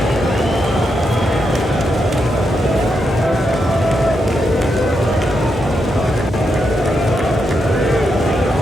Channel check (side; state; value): both; normal; correlation 0.83